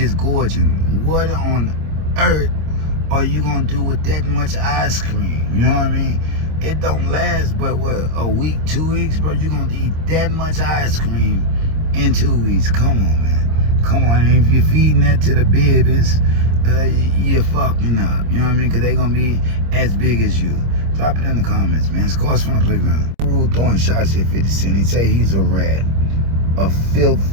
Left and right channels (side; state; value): left; late; 26 ms